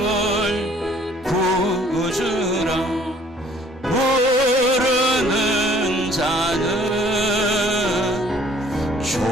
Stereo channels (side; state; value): both; normal; correlation 0.57